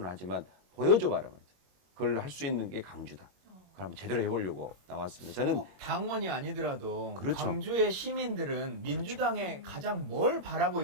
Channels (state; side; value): late; left; 21 ms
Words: 하지만 보여줘봐라 말이죠. 그걸 할 수 있는 게 강주다. 그걸 한번 제대로 해보려고 나왔습니다. 저는 꼭 당원이 아니더라도 그렇죠. 광주의 시민들은 민주당에 가장 뭘 바라고